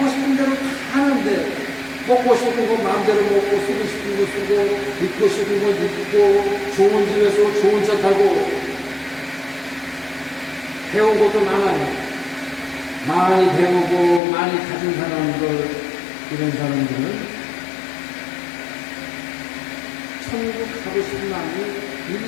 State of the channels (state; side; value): drops out; right; at 14.2 s